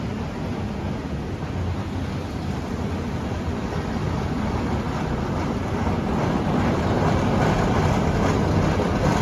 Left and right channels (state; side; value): identical; both; correlation 1.00